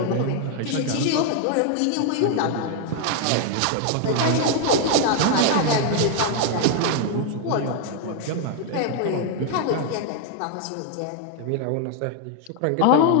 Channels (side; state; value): both; different; correlation 0.00